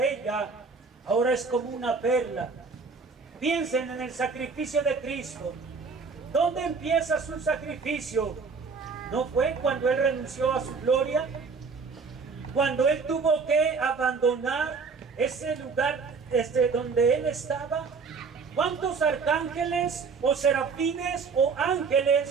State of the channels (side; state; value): left; quieter; 5.0 dB